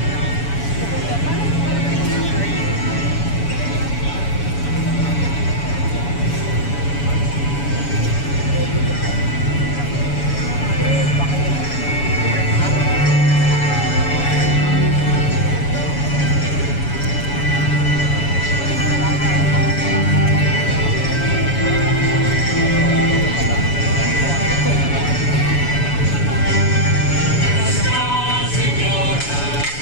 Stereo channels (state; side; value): late; right; 7.1 ms